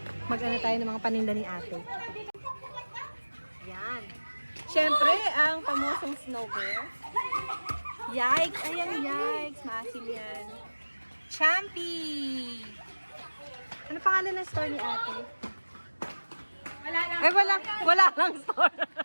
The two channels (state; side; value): inverted; both; correlation -1.00